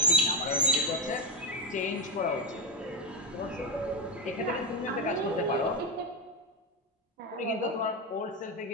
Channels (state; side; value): normal; both; correlation 0.10